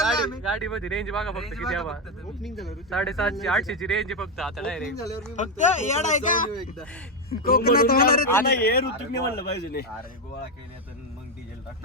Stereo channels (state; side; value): normal; both; correlation 0.07